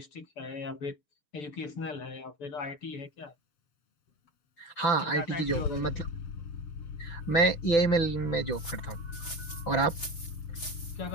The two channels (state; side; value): late; right; 6.2 ms